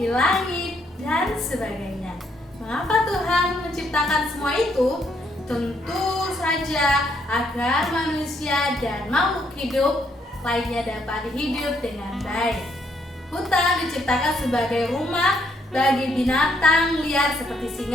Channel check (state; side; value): normal; both; correlation 0.72